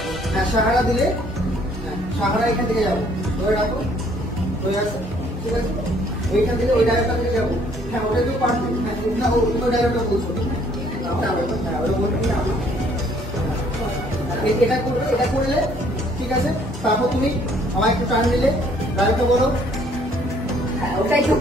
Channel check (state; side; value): normal; both; correlation 0.62